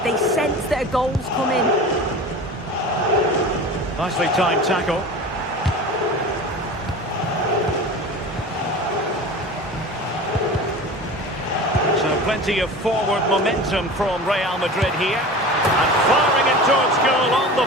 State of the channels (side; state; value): both; normal; correlation 0.35